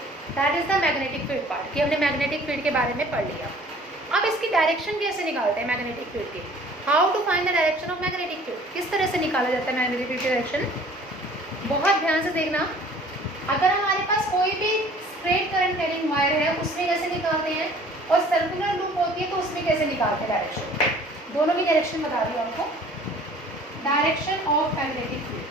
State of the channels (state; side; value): normal; both; correlation 0.51